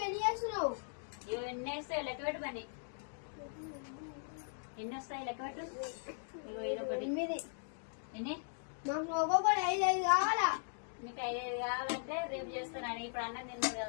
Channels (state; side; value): silent; right; digital silence